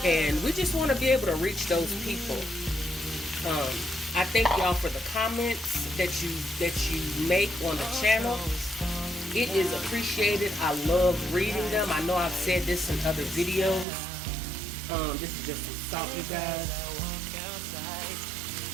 and we just want to be able to reach those people. I thank y'all for the comments that you make on the channel. It is appreciated. I love reading them. I know I've said this in other videos. This is just some salt, you guys.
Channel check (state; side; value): drops out; left; at 13.9 s